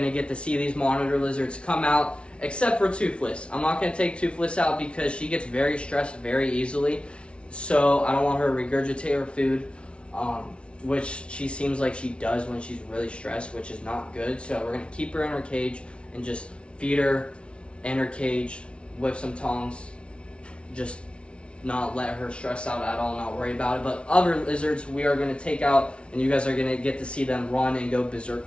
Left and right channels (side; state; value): right; late; 0.059 ms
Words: to get to see these monitor lizards come out, except for Toothless. I'm not going to take Toothless out because she gets very stressed very easily. So I don't want her to regurgitate her food, which she seems like she does when she's really stressed, which is not good. So we're going to keep her in her cage and just feed her in her cage with some tongs. Just not let her stress out at all, not worry about it. But other lizards we are going to take out, and you guys are going to get to see them run and go